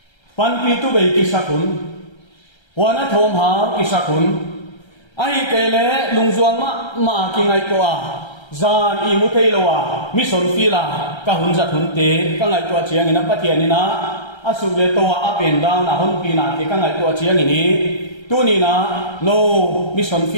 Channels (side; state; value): right; late; 1.3 ms